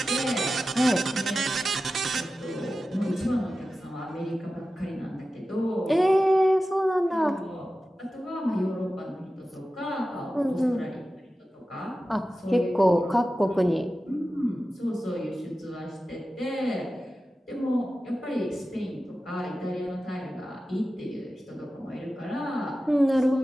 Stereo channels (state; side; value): normal; both; correlation 0.94